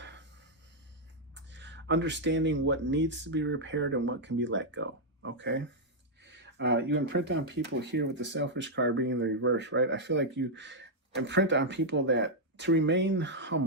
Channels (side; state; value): both; normal; correlation -0.04